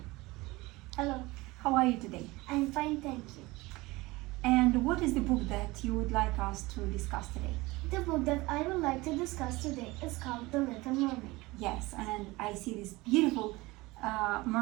Hello. How are you today? I'm fine, thank you. And what is the book that you would like us to discuss today? The book that I would like to discuss today is called The Little Mermaid. Yes, and I see this beautiful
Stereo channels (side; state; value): left; quieter; 21.4 dB